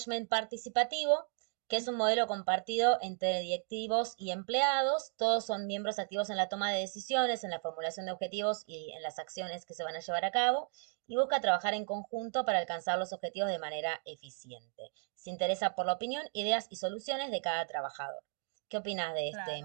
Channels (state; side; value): silent; left; 55 dB below the other